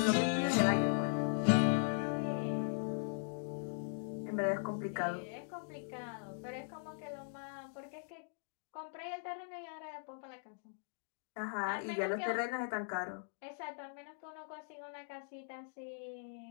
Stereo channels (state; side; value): silent; right; digital silence